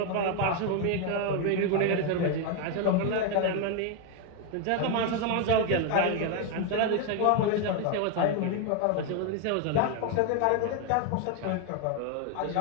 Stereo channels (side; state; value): both; different; correlation 0.01